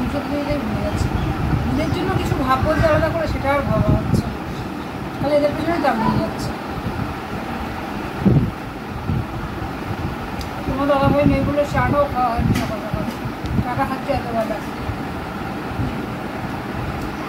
সেদ্ধ দিয়ে ভুলে যাচ্ছে। নিজের জন্য কিছু ভাববো যে আলাদা করে, সেটা আর ভাবা হচ্ছে, তাহলে এদের পেছনে দাম নিয়ে যাচ্ছে। কোনো দাদাভাই মেয়েগুলো চাটাও খাওয়া হয়নি সকাল সকাল, টাকা খাচ্ছে এত বেলা।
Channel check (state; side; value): identical; both; correlation 1.00